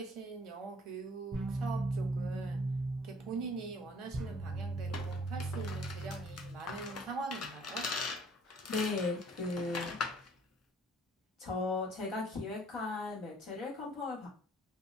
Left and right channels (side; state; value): both; normal; correlation 0.57